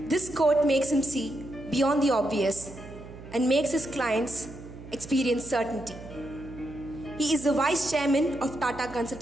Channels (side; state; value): right; noise; hum, 15 dB below the sound